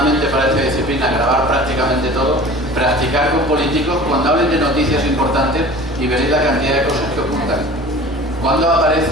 para esta disciplina, grabar prácticamente todo, practicar con políticos cuando hablen de noticias importantes y veréis la cantidad de cosas que ocultan. Cuando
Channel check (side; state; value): right; noise; hum, 12 dB below the sound